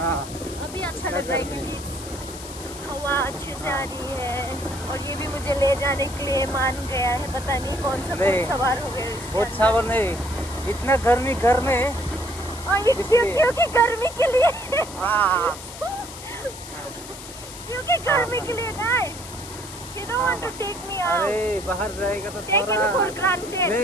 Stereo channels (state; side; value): noise; left; hiss, 13 dB below the sound